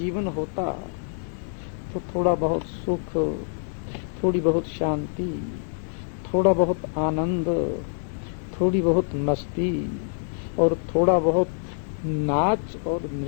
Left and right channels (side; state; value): right; silent; digital silence